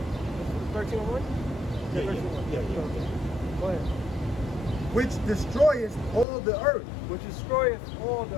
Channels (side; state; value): right; drops out; at 6.2 s